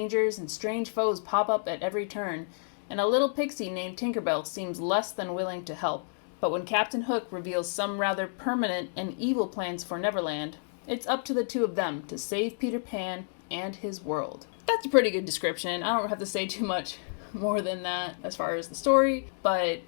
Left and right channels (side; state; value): right; silent; digital silence